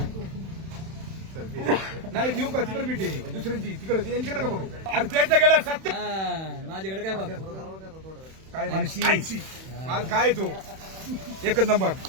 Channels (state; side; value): late; left; 31 ms